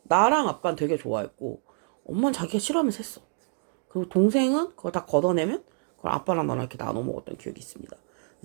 나랑 아빠는 되게 좋아했고 엄마는 자기가 싫어하면서 했어. 그리고 동생은 그걸 다 걷어내면 그걸 아빠랑 나랑 이렇게 나눠 먹었던 기억이 있습니다.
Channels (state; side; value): silent; left; 60 dB below the other